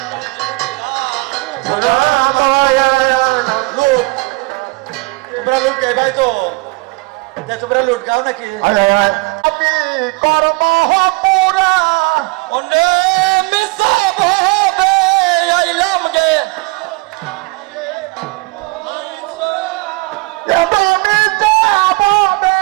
লুট তোমরা লুট গাই ভাই তো তোমরা লুট গাও নাকি আমি কর্ম পুরা অনে মিসা ভাবে আইলাম গে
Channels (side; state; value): left; quieter; 25.4 dB